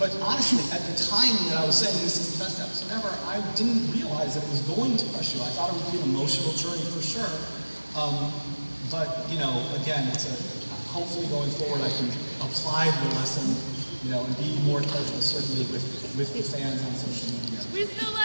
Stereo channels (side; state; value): both; inverted; correlation -1.00